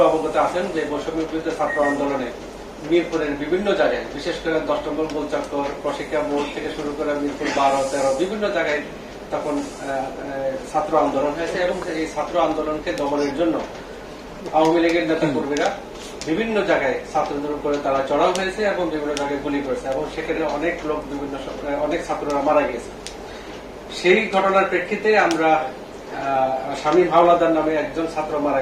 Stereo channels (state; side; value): identical; both; correlation 1.00